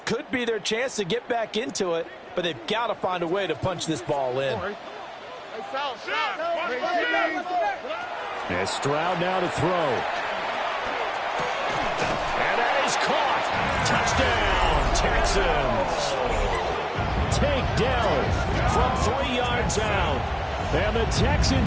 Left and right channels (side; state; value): both; identical; correlation 1.00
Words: could be their chance to get back into it, but they've got to find a way to punch this ball in. And Stroud now to throw. And that is caught. Touchdown, Texans. Takedown from 3 yards out. And the